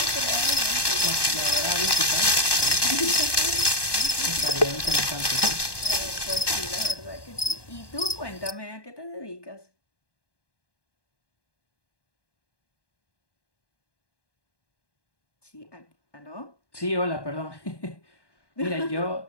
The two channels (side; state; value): right; late; 1.2 ms